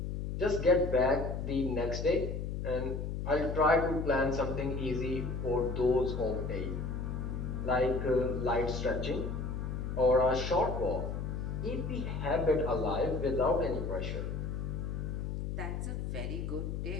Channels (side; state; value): left; noise; hum, 3 dB below the sound